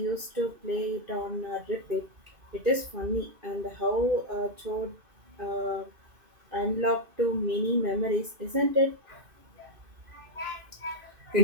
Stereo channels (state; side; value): late; left; 2.6 ms